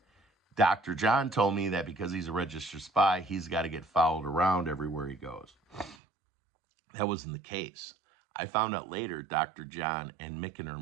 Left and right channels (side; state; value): left; drops out; at 6.0 s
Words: Dr. John told me that because he's a registered spy, he's got to get followed around everywhere he goes. That wasn't the case. I found out later Dr. John and